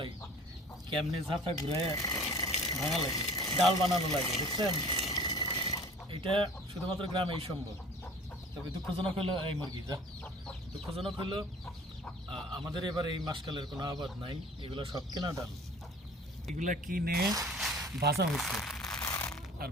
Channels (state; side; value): normal; both; correlation 0.46